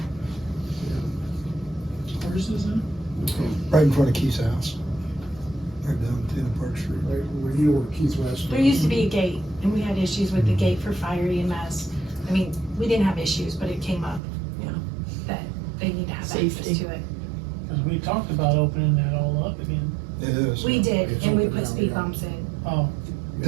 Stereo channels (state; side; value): drops out; left; at 14.2 s